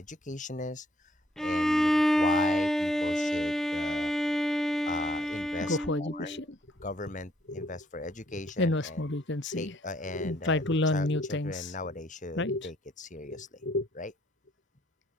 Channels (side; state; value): both; normal; correlation 0.67